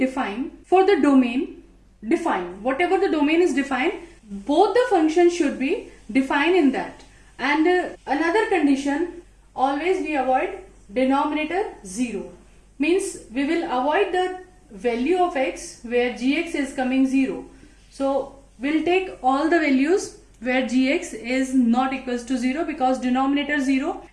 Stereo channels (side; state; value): both; identical; correlation 1.00